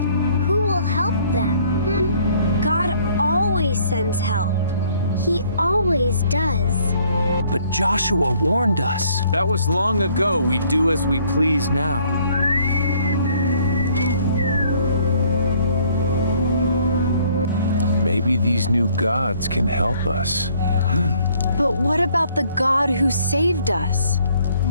who will help them? God always sends help. He always does. But Joshua warned us. That was long ago. We do as we please now. Maybe these new gods can help us. But what about the God who saved us?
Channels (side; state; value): both; inverted; correlation -0.62